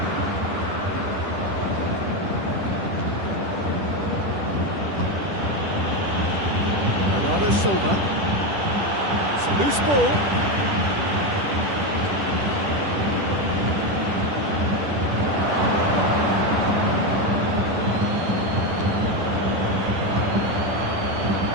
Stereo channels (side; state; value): left; late; 10 ms